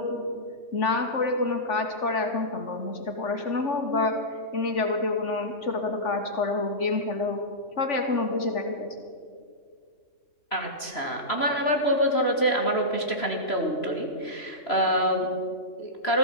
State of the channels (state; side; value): late; right; 3.0 ms